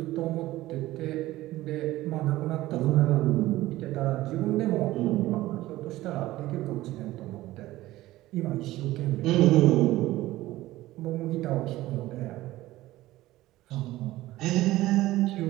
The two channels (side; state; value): left; quieter; 16.7 dB